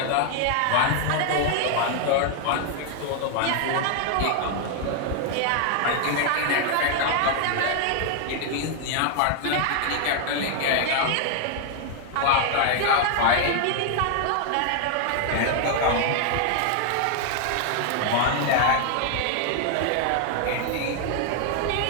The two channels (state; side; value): different; both; correlation 0.00